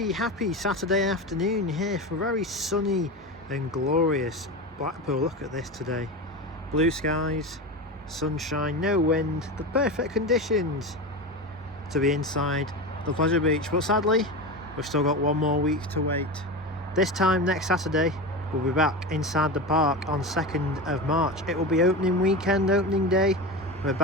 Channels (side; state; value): both; normal; correlation 0.24